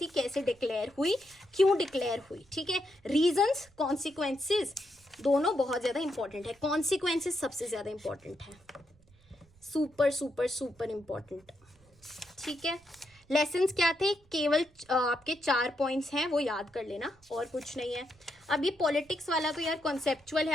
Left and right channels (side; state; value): right; noise; rumble, 29 dB below the sound